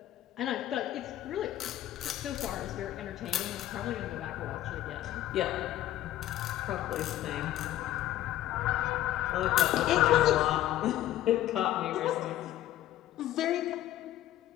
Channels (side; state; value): right; quieter; 13.6 dB